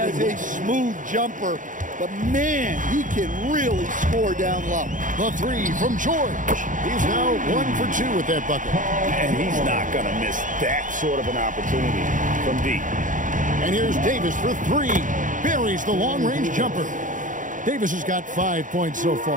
a smooth jumper, but man, he can really score down low. The 3 from George. He's now 1 for 2 with that bucket. And he's not going to miss that sort of an opportunity from deep. And here's Davis for 3. Buries the long-range jumper. Davis has got 5 points so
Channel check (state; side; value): late; left; 0.38 ms